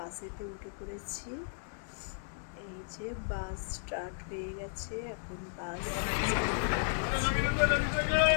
উঠে পড়েছি। এই যে বাস স্টার্ট হয়ে গেছে, এখন বাস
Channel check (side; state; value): right; silent; digital silence